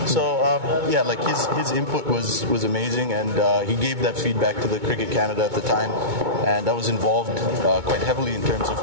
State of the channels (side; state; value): left; late; 2.2 ms